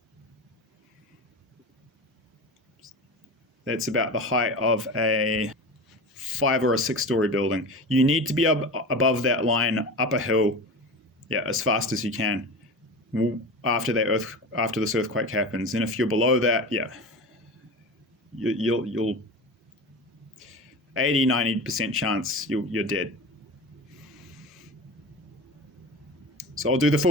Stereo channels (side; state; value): both; normal; correlation 0.30